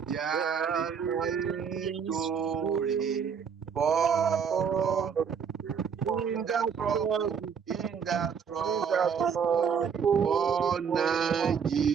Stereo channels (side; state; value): left; quieter; 6.9 dB